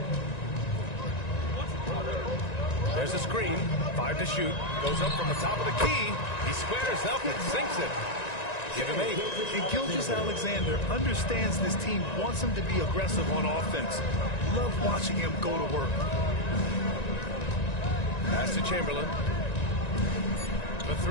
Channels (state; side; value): late; right; 1.9 ms